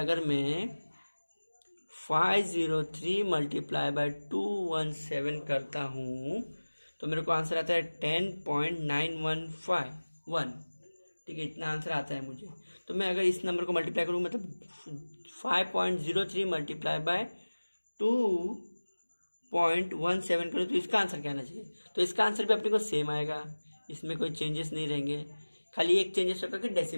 मैं 503 मल्टीप्लाई बाय 217 करता हूँ तो मेरे को आंसर आता है 10.9151, ठीक है, इतना आंसर आता है मुझे। तो मैं अगर इस नंबर को मल्टीप्लाई करूँ, मतलब 5.03 मल्टीप्लाई बाय 2.17 करूँ तो इसका आंसर क्या आना चाहिए। तो इसका आंसर भी अपने को सेम आएगा, इसमें कोई चेंजेस नहीं रहेंगे, खाली एक चेंजेस होगा कि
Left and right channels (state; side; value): inverted; both; correlation -1.00